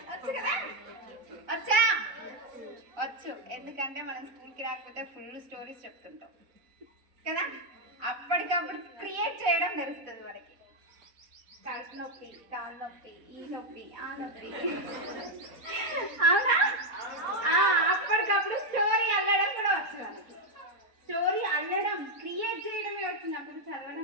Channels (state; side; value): late; left; 4.3 ms